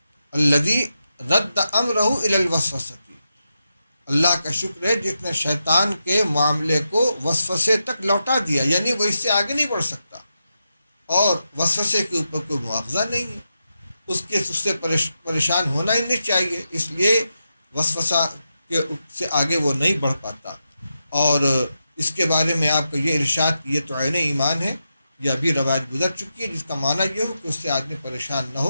الذی رد امرہ الی الوسوسۃ، اللہ کا شکر ہے جس نے شیطان کے معاملے کو وسوسے تک لوٹا دیا، یعنی وہ اس سے آگے نہیں بڑھ سکتا۔ اور وسوسے کے اوپر کوئی مواخذہ نہیں ہے، اس سے پریشان ہونا ہی نہیں چاہیے، اس لیے وسوسہ کے سے آگے وہ نہیں بڑھ پاتا۔ اور اس کے بارے میں آپ کا یہ ارشاد کہ یہ تو عین ایمان ہے، یہ ابھی روایت گزر چکی ہے، جس کا معنی یہ ہو کہ اس سے آدمی پریشان نہ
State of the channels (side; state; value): both; inverted; correlation -0.87